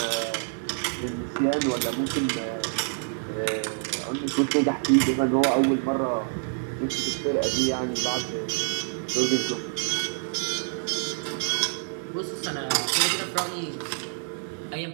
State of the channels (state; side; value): silent; left; 56 dB below the other